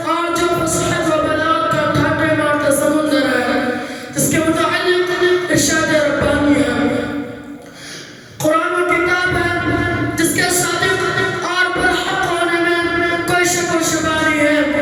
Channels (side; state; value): both; identical; correlation 1.00